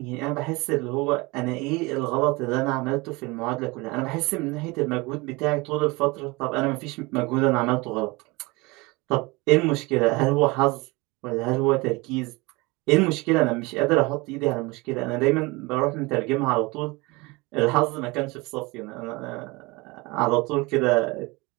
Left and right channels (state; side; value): quieter; left; 24.4 dB